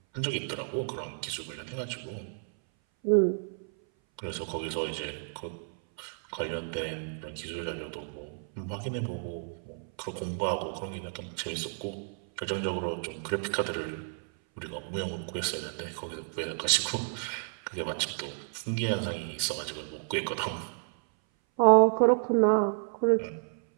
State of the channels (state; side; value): silent; left; 57 dB below the other